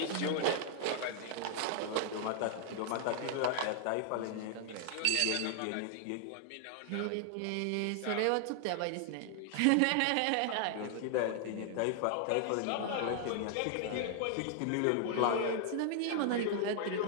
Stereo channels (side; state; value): both; different; correlation 0.00